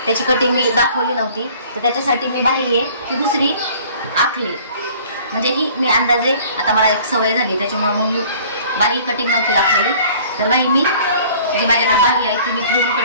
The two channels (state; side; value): inverted; both; correlation -0.51